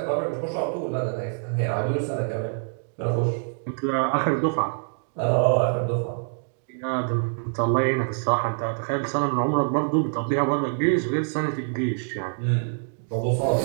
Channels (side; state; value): left; silent; digital silence